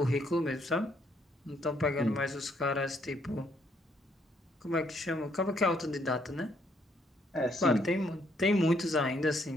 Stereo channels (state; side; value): normal; both; correlation 0.70